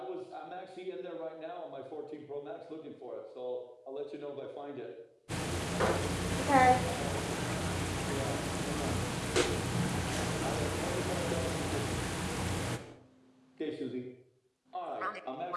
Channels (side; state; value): both; identical; correlation 1.00